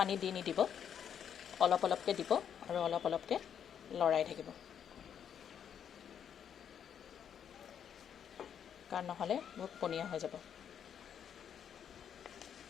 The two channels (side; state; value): right; quieter; 8.5 dB